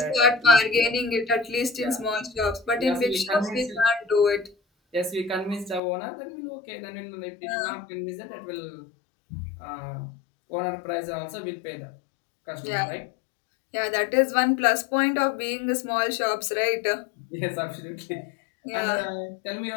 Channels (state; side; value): drops out; right; at 5.8 s